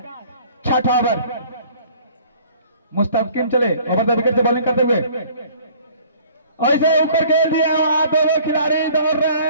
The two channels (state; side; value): inverted; both; correlation -0.53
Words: छठा ओवर। मुस्तकीम चले ओवर द विकेट से बॉलिंग करते हुए ऐसे ऊपर खेल दिया, वहां दोनों खिलाड़ी दौड़ रहे